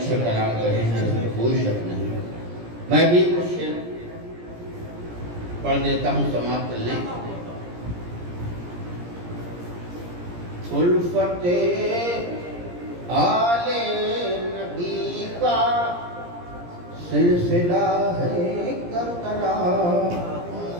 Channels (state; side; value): late; left; 17 ms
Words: کلام کہے ہیں، اس میں کوئی شک نہیں۔ میں بھی کچھ شعر پڑھ دیتا ہوں، سماعت کر لیں۔ الفت آل نبی کا سلسلہ ہے کربلا۔